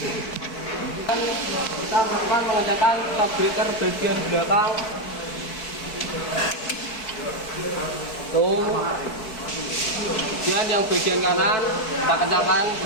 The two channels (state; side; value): late; right; 4.6 ms